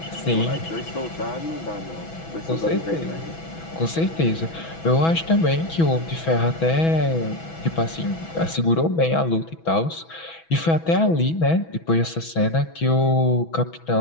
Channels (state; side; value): late; right; 6.1 ms